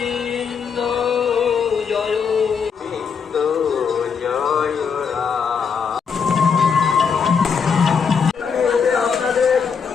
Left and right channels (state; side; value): quieter; right; 6.2 dB